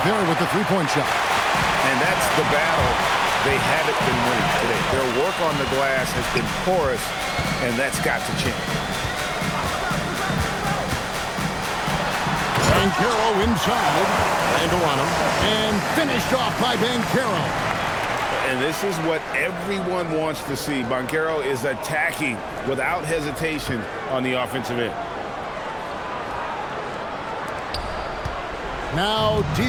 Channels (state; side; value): identical; both; correlation 1.00